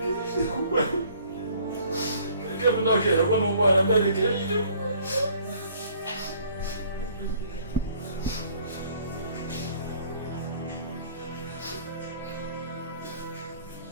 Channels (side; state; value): both; inverted; correlation -0.58